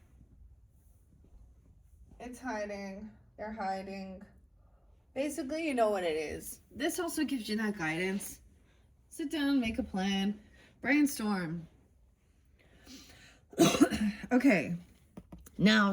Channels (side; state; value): both; identical; correlation 1.00